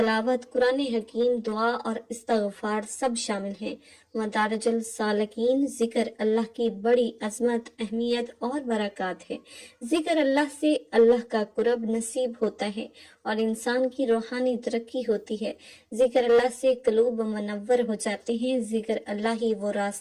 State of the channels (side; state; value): both; identical; correlation 1.00